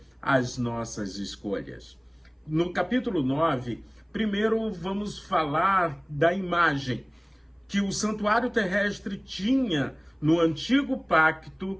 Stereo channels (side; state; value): both; identical; correlation 1.00